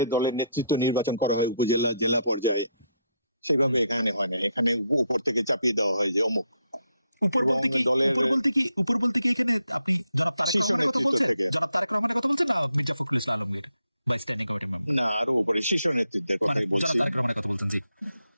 দলের নেতৃত্ব নির্বাচন করা হয় উপজেলা জেলা পর্যায়ে, সেইভাবে এখানে হয় না। এখানে উপর থেকে চাপিয়ে দেওয়া হয় যে অমুক। উপর বলতে কি এখানে আপনি জনাব তারেক রহমানের কথা বলছেন? জনাব তারেক রহমানের কথা বলছেন না মির্জা ফখরুল ইসলাম আলমগীর বা স্ট্যান্ডিং কমিটি মেম্বার? না, আরো উপরে শীর্ষ নেতৃত্বের কথাই বলছি। জনাব তারেক রহমানের কথা বলছেন, জি।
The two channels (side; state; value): both; inverted; correlation -0.77